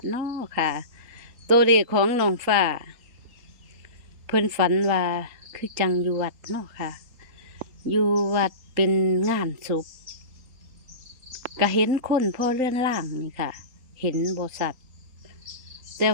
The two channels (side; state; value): left; late; 3.8 ms